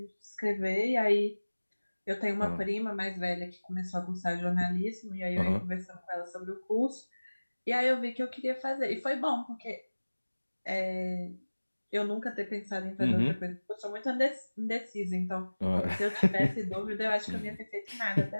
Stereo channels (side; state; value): both; inverted; correlation -1.00